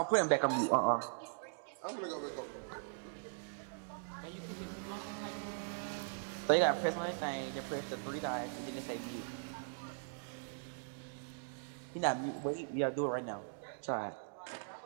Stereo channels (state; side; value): silent; left; digital silence